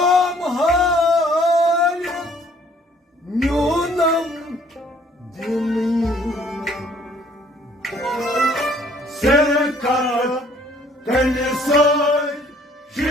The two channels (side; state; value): both; normal; correlation 0.60